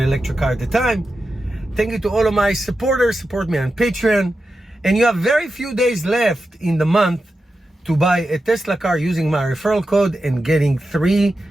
car at a time. Thank you to all of my supporters. Support me on Patreon. And you have very few days left in the month to buy a Tesla car using my referral code and getting 3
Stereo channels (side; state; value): both; normal; correlation 0.90